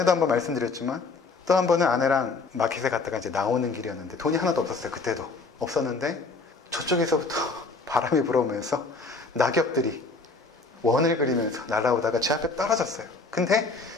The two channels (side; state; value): right; quieter; 3.9 dB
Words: 한번 말씀드렸지만 또 한 번은 아내랑 마켓에 갔다가 이제 나오는 길이었는데 돈이 하나도 없었어요. 그때도 없었는데 저쪽에서부터 바람이 불어오면서 낙엽들이 원을 그리면서 날아오다가 제 앞에 떨어졌어요. 근데